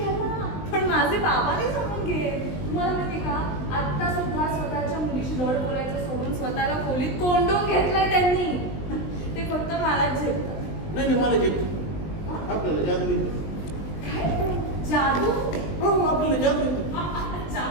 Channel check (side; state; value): right; late; 20 ms